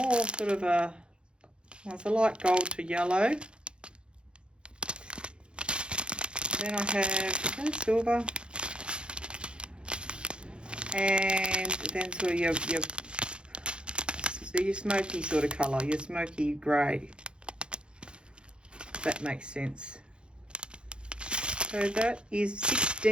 sort of a, well, it's a light gold to yellow. Then I have silver. And then sort of your smoky sort of colour, your smoky grey. That makes sense. So that is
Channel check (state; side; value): late; left; 0.054 ms